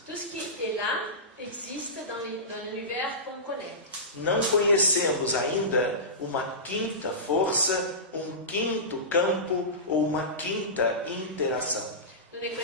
Tout ce qui est là existe dans l'univers qu'on connaît. Não conhecemos ainda uma quinta força, um quinto campo ou uma quinta interação. Nous ne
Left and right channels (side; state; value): both; normal; correlation -0.19